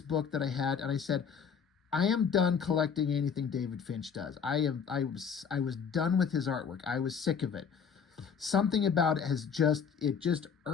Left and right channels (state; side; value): quieter; right; 6.6 dB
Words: book that I had, and I said, I am done collecting anything David Finch does. I was done with his artwork. I was sick of it. Something about it just